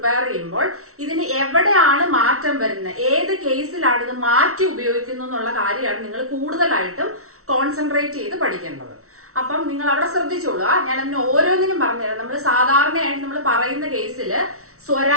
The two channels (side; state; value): left; late; 0.63 ms